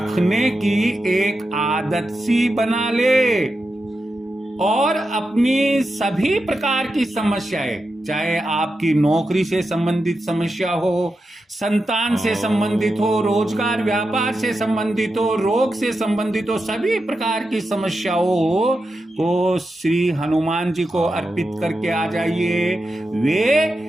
की एक आदत सी बना ले। और अपनी सभी प्रकार की समस्याएं, चाहे आपकी नौकरी से संबंधित समस्या हो, संतान से संबंधित हो, रोजगार व्यापार से संबंधित हो, रोग से संबंधित हो, सभी प्रकार की समस्याओं को श्री हनुमान जी को अर्पित करके आ जाइए। वे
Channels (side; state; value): both; normal; correlation 0.89